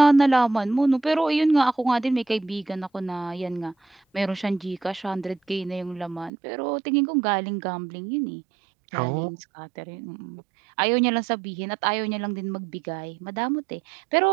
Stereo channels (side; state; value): left; drops out; at 6.3 s